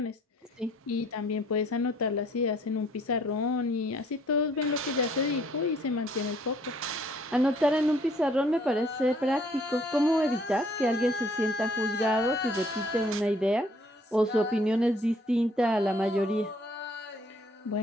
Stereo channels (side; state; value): both; normal; correlation 0.61